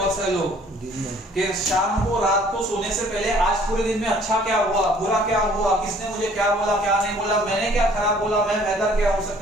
सारे लोग कि शाम को, रात को सोने से पहले आज पूरे दिन में अच्छा क्या हुआ, बुरा क्या हुआ, किसने मुझे क्या बोला, क्या नहीं बोला, मैंने क्या खराब बोला, मैं बेहतर क्या हो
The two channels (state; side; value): normal; both; correlation 0.56